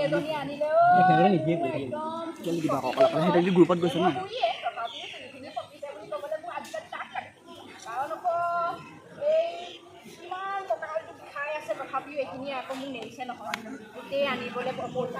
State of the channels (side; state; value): both; identical; correlation 1.00